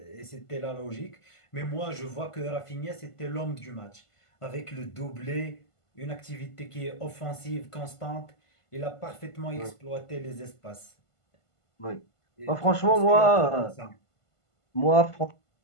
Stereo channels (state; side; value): late; right; 1.5 ms